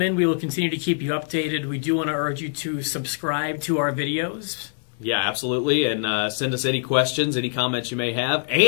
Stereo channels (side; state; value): right; silent; 63 dB below the other